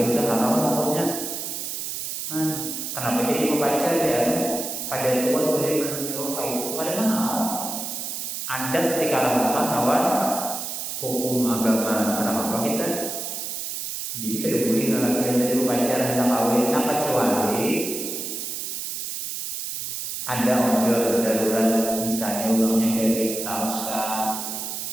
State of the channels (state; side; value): noise; right; hiss, 5 dB below the sound